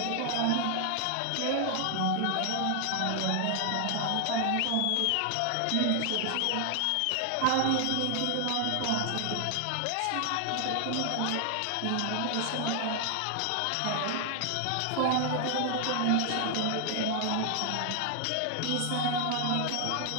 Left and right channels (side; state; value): both; different; correlation 0.00